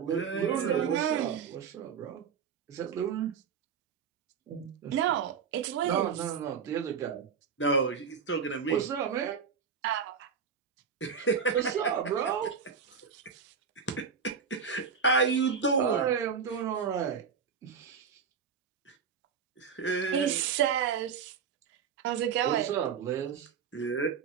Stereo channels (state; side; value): quieter; left; 6.4 dB